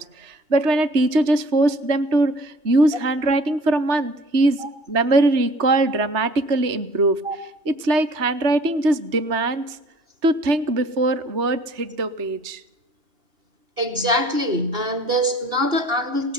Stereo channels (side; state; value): left; late; 3.3 ms